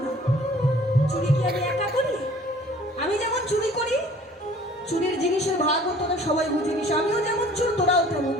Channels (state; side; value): normal; both; correlation 0.52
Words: না। চুরি কি আমি একা করি? আমি যেমন চুরি করি, চুরির জিনিসের ভাগ তোরা সবাই বুঝে নিস। আমিও যেমন চোর, তোরাও তেমন